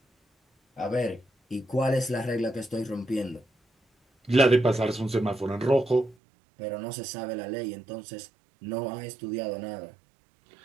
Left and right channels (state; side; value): drops out; left; at 6.2 s